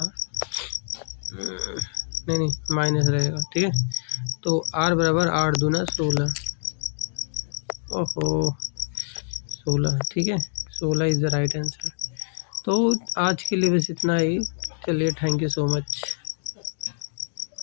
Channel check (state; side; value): silent; right; digital silence